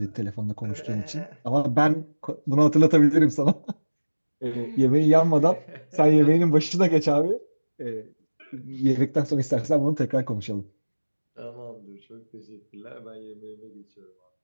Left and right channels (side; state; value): both; inverted; correlation -1.00